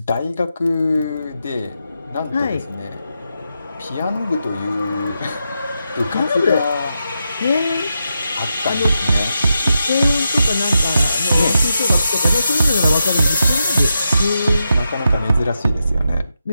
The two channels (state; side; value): inverted; both; correlation -0.86